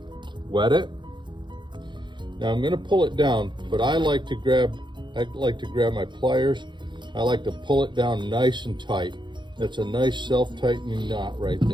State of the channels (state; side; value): late; left; 0.22 ms